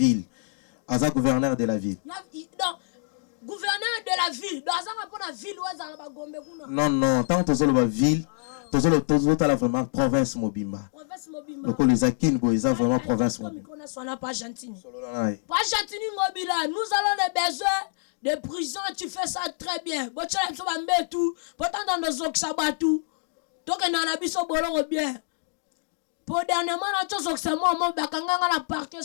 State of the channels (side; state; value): right; silent; digital silence